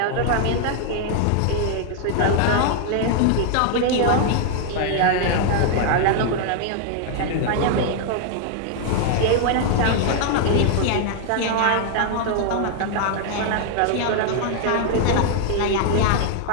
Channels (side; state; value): both; different; correlation 0.00